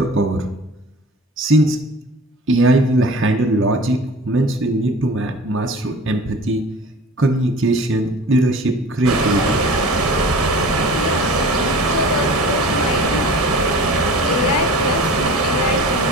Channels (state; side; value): normal; both; correlation 0.40